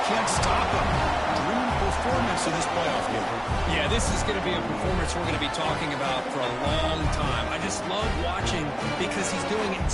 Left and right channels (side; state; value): both; identical; correlation 1.00